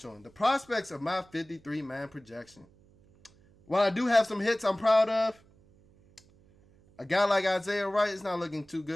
on, the prospects of my 53-man projection. While I do have some hits I'm proud of, a guy like Isaiah Wright is not looking too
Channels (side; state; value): right; noise; hum, 29 dB below the sound